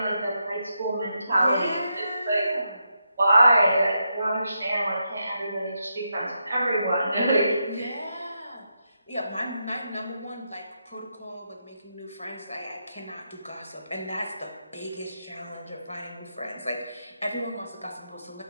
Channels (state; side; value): inverted; both; correlation -0.83